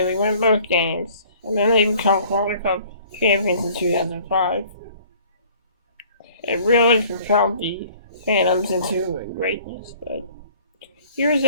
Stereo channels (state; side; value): inverted; both; correlation -0.53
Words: they win both games, and then they become Calder Cup champions in 2005. It really propelled the Phantoms into greatness, but years